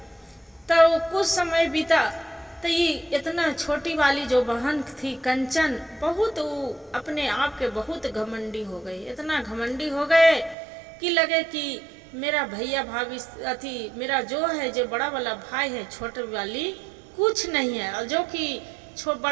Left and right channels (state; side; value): drops out; left; at 10.6 s